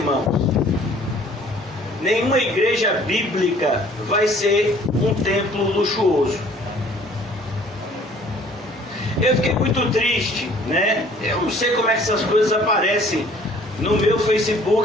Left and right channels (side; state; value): both; normal; correlation 0.55